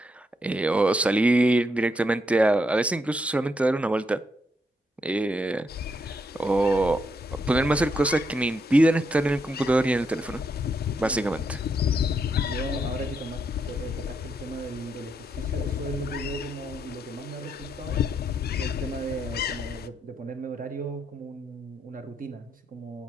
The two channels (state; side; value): normal; both; correlation 0.78